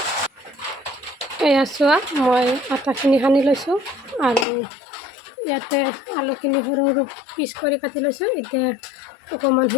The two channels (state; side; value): drops out; right; at 4.5 s